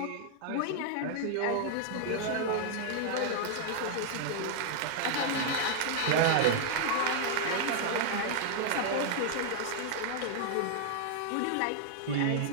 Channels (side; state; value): both; different; correlation 0.00